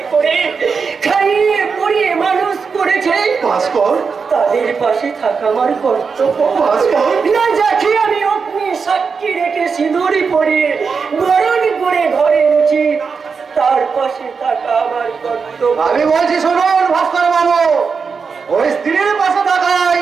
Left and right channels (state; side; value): quieter; left; 5.4 dB